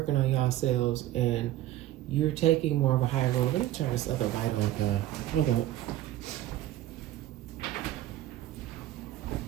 on yourselves, and you're taking more of a higher role. Let me turn this other light on. Hold up.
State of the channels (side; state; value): left; quieter; 14.1 dB